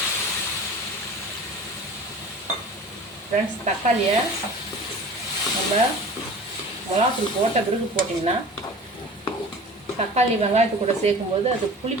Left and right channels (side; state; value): both; normal; correlation 0.40